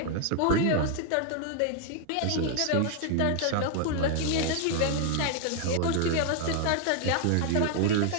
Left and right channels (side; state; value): both; different; correlation 0.00